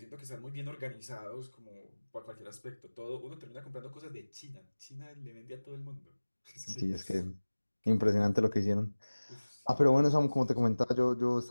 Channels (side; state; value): both; inverted; correlation -1.00